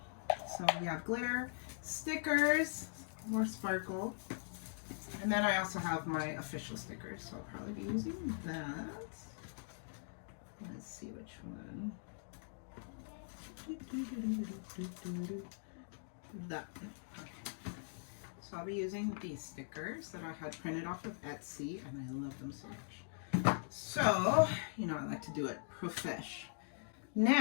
so we have glitter, stickers, more sparkle, and then I also have my official stickers, so I'll probably be using that. Let's see which one. That one. Okay. So I'll be using these stickers that I had printed off of Etsy, and I love them so much. So, you know, I like to do it profesh.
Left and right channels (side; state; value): right; silent; digital silence